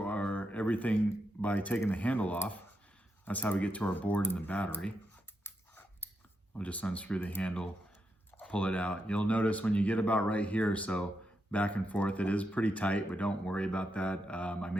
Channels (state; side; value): normal; both; correlation 0.84